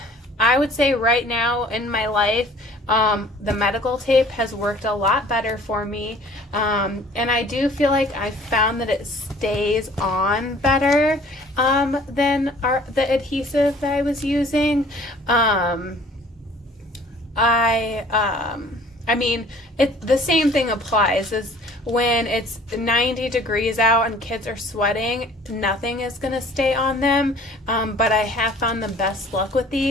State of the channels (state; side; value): normal; both; correlation 0.52